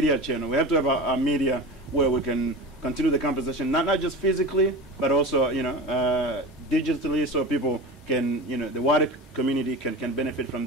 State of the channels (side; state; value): both; normal; correlation 0.31